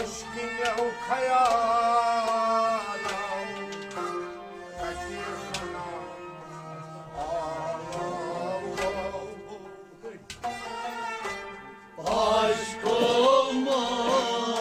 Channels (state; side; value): identical; both; correlation 1.00